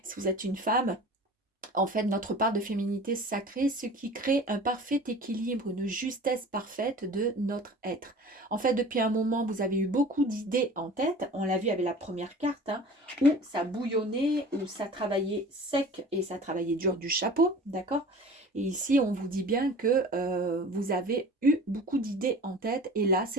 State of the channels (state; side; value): normal; both; correlation 0.41